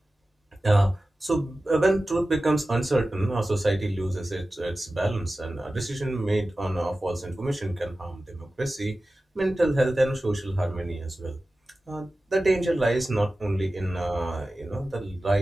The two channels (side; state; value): both; normal; correlation 0.95